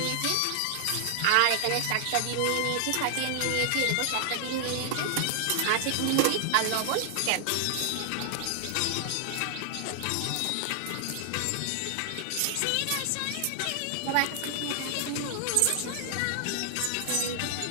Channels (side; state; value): both; different; correlation 0.00